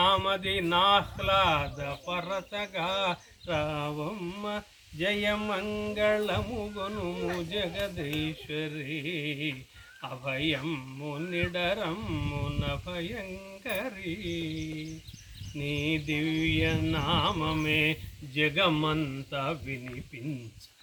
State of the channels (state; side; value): identical; both; correlation 1.00